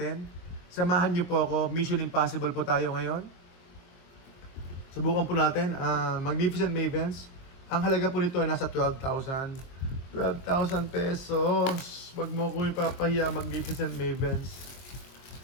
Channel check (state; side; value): late; right; 23 ms